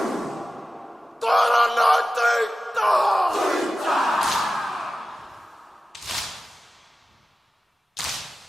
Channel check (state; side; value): normal; both; correlation 0.95